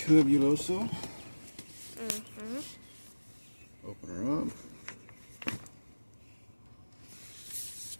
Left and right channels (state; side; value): inverted; both; correlation -1.00